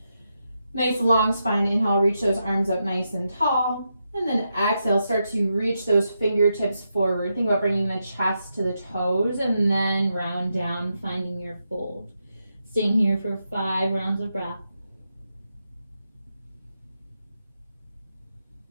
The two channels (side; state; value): both; inverted; correlation -0.85